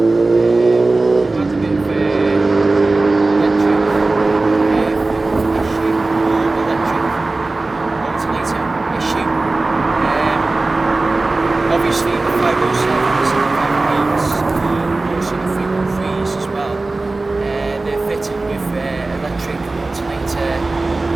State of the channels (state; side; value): quieter; left; 3.3 dB